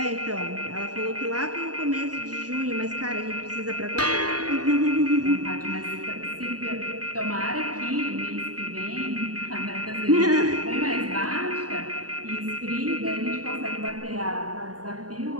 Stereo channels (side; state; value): left; late; 0.68 ms